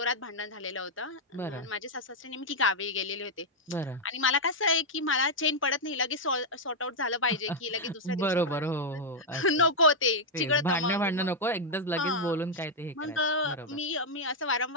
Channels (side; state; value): both; normal; correlation -0.02